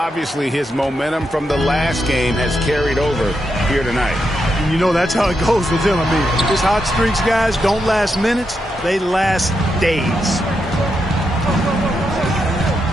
his momentum from the last game has carried over here tonight. And you know, that's how it goes with him. I mean, his hot streaks, guys, don't last minutes. They last days.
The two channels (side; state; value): both; normal; correlation 0.84